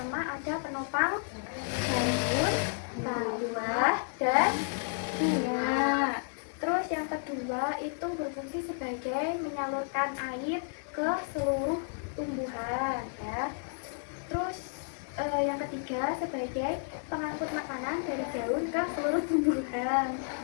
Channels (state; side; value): silent; right; digital silence